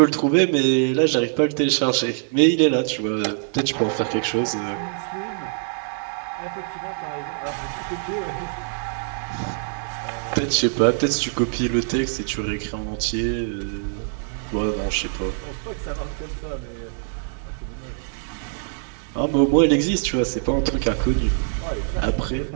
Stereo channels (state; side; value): silent; left; 63 dB below the other